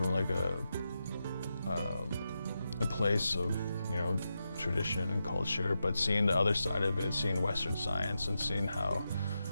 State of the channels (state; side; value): inverted; both; correlation -0.88